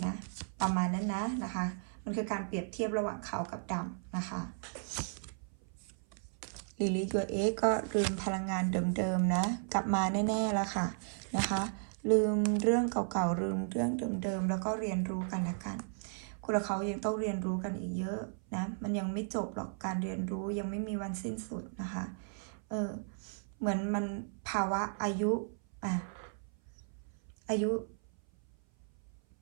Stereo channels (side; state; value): left; silent; 54 dB below the other